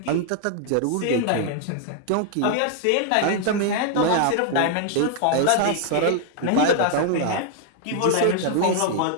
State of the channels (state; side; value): different; both; correlation 0.00